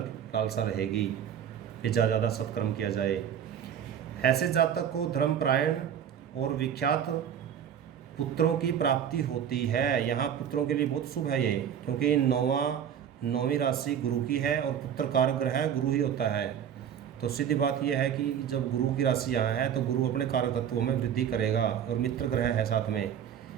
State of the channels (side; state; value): left; quieter; 8.8 dB